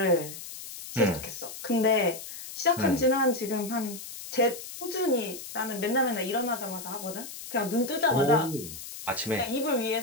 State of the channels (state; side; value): noise; left; hiss, 11 dB below the sound